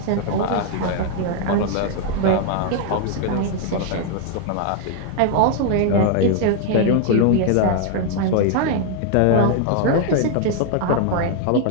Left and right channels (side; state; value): both; different; correlation 0.00